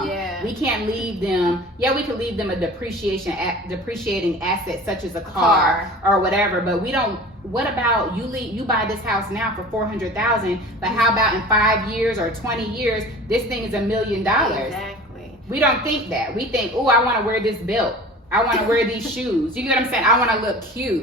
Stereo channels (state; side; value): normal; both; correlation 0.40